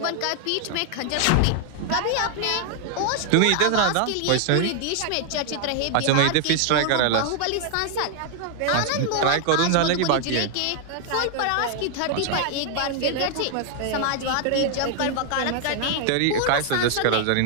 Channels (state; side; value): different; both; correlation 0.00